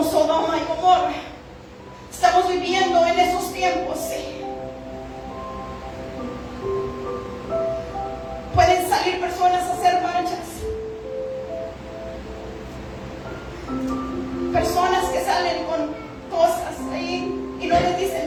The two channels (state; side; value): identical; both; correlation 1.00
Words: Sodoma y Gomorra. Estamos viviendo en esos tiempos, sí. Pueden salir personas a hacer marchas. Personas que salen con cosas ahí y no les